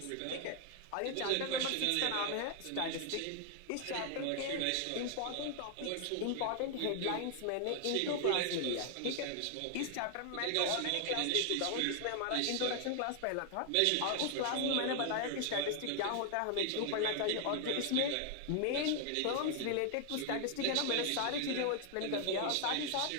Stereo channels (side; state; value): both; different; correlation 0.00